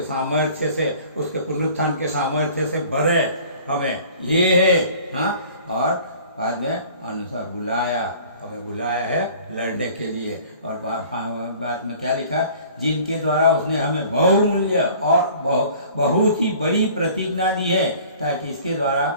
सामर्थ्य से, उसके पुनरुत्थान के सामर्थ्य से भरे हमें। ये है। हाँ, और बाद में अनुसार बुलाया, हमें बुलाया है लड़ने के लिए। और बाद में क्या लिखा? जिनके द्वारा उसने हमें बहुमूल्य और बहुत ही बड़ी प्रतिज्ञा दी है, ताकि इसके द्वारा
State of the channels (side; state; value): both; inverted; correlation -0.49